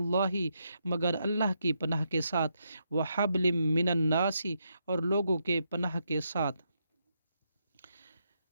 مگر اللہ کی پناہ کے ساتھ، وحبل من الناس، اور لوگوں کے پناہ کے ساتھ،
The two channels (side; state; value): both; inverted; correlation -0.80